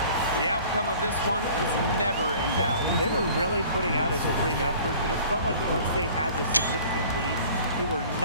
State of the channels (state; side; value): inverted; both; correlation -0.48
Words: The outcome of this one was never in doubt. They were really putting out a supreme effort, and it felt like once they had the significant lead, they were